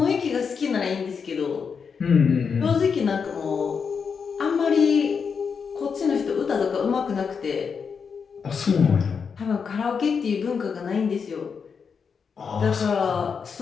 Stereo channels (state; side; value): quieter; right; 6.0 dB